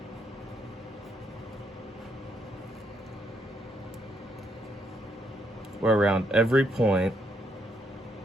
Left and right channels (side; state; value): both; normal; correlation 0.74